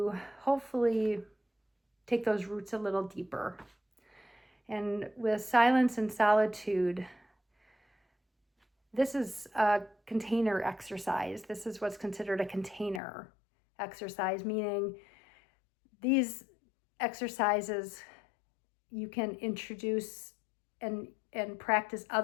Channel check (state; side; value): drops out; right; at 13.0 s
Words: hopefully take those roots a little deeper. And with silence and solitude, this is a container exercise. This is what's considered a container exercise, meaning these exercises you can introduce and practice